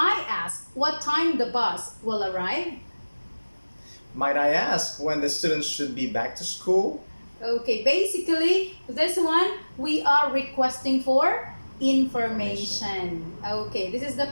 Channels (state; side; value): inverted; both; correlation -1.00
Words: ask what time the bus will arrive? Might I ask when the students should be back to school? Okay, basically, this one, we are requesting for information. Okay, this is the